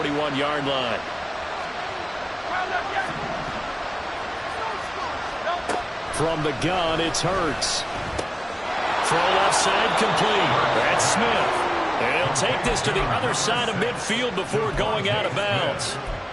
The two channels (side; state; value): both; identical; correlation 1.00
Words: line. From the gun, it's Hurts. Throw left side complete. That's Smith. And he'll take this to the other side of midfield before going out of bounds.